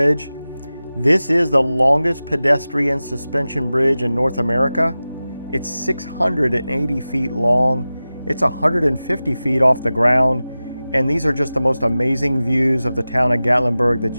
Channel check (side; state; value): both; inverted; correlation -0.96